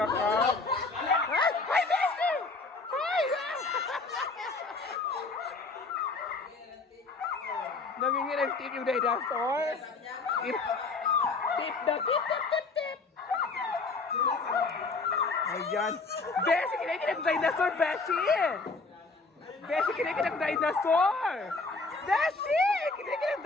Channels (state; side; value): quieter; right; 3.8 dB